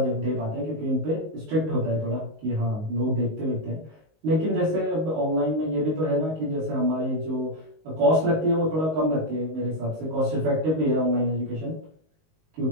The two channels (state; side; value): late; left; 19 ms